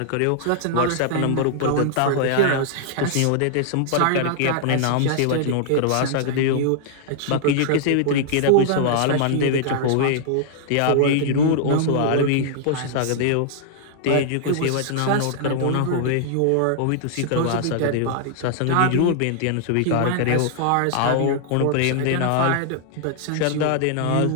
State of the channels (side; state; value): both; different; correlation -0.01